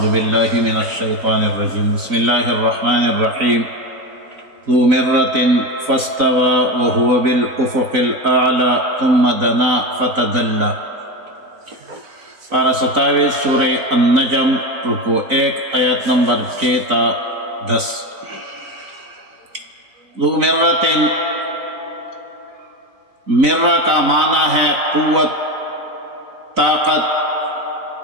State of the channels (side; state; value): left; late; 4.0 ms